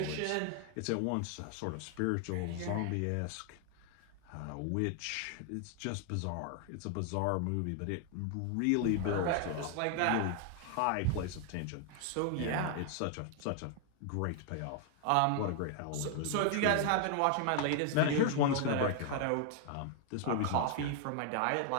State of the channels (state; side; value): different; both; correlation 0.00